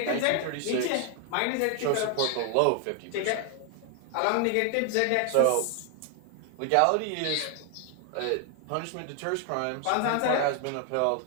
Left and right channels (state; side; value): different; both; correlation 0.00